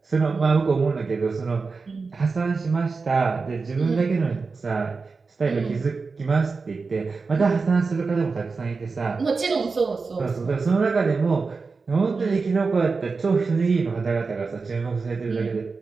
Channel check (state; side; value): quieter; left; 4.4 dB